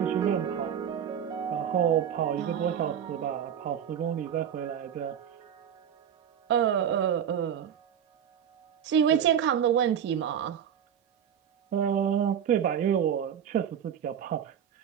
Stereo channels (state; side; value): quieter; left; 8.8 dB